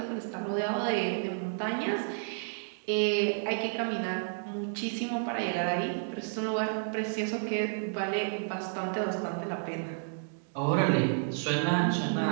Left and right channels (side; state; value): left; silent; digital silence